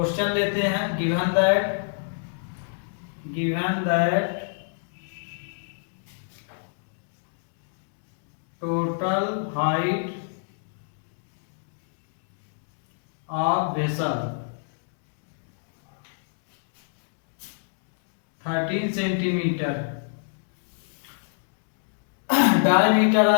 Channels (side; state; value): right; silent; digital silence